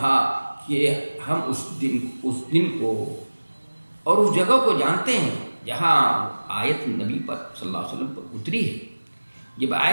کہ ہم اس دن کو اور اس جگہ کو جانتے ہیں جہاں آیت نبی پر صلی اللہ علیہ وسلم پر اتری ہے۔ جب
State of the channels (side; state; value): both; inverted; correlation -1.00